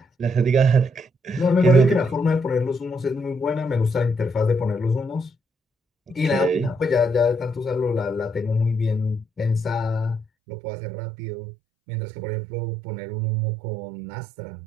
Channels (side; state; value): left; drops out; at 10.2 s